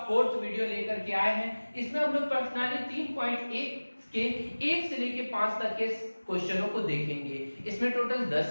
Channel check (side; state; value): both; inverted; correlation -1.00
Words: फोर्थ वीडियो लेकर के आए हैं। इसमें हम लोग प्रश्नावली 3.1 के 1 से लेके 5 तक के क्वेश्चनों को देखेंगे। इसमें टोटल